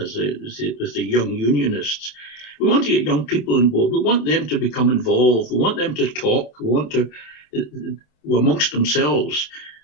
the young unionists. We want to get young people on board. We want them to become involved. We want them to talk. We want to amongst themselves.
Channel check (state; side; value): late; right; 27 ms